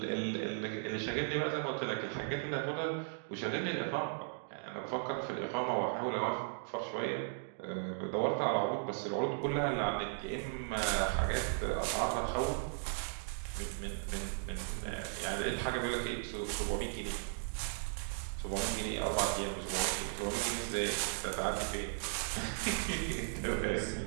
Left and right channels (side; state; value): left; silent; digital silence